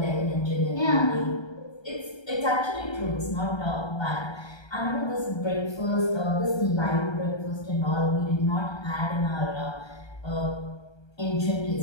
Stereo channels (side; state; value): right; late; 1.3 ms